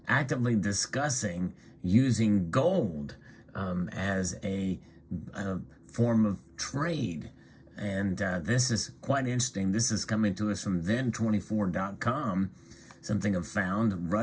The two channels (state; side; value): identical; both; correlation 1.00